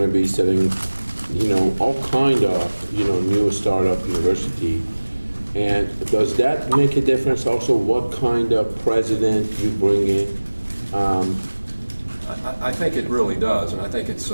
to be setting, all kind of, new startup university. And does that make a difference? Also, what kind of president you bring in? I think it really does, and I think it's,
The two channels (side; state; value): both; inverted; correlation -1.00